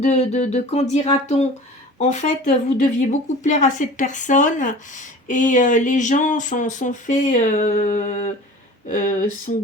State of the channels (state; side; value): normal; both; correlation 0.41